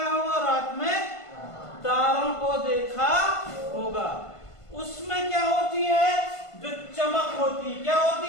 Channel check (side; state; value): right; late; 1.5 ms